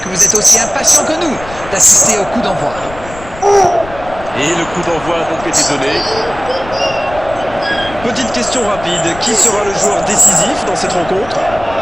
vous êtes aussi impatients que nous d'assister au coup d'envoi. Et le coup d'envoi a donc été donné. Petite question rapide, qui sera le joueur décisif dans cette rencontre?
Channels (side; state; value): left; noise; rumble, 15 dB below the sound